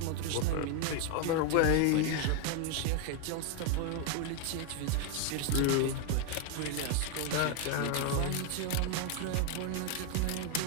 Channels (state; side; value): different; both; correlation 0.01